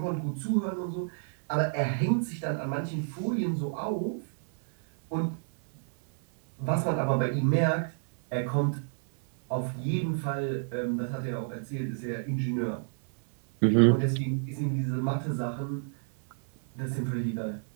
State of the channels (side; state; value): left; silent; 58 dB below the other